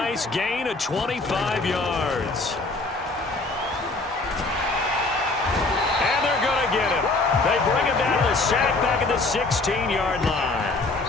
gain of 25 yards. And they're going to get him. They bring him down to the sack back at the 16-yard line.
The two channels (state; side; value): quieter; right; 3.3 dB